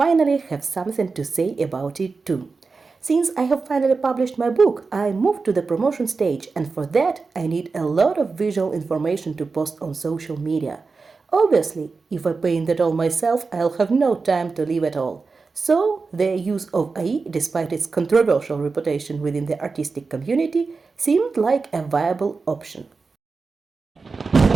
have something to say about it too. Since I have finally published my book, I moved to the promotion stage, and for that I need a lot of visual information to post on social media. Obviously, if I paint that all myself, I'll have no time to live at all. So, the use of AI, despite its controversial reputation within the artistic community, seemed like a viable option.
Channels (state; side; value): quieter; left; 4.4 dB